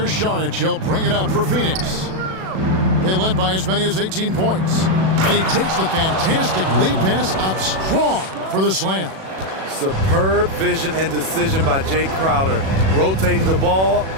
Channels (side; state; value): left; late; 37 ms